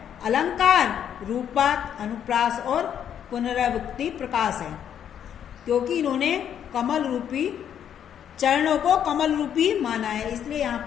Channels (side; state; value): right; quieter; 9.2 dB